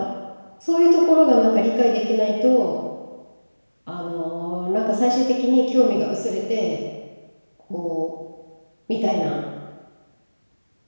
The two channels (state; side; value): inverted; both; correlation -1.00